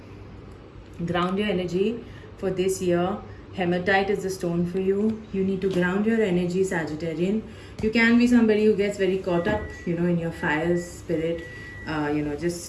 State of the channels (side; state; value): both; identical; correlation 1.00